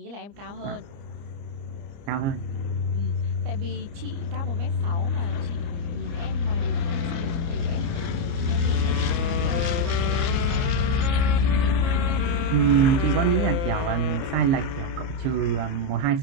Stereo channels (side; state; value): left; late; 29 ms